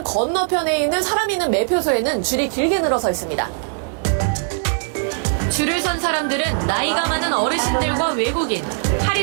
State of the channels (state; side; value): silent; left; digital silence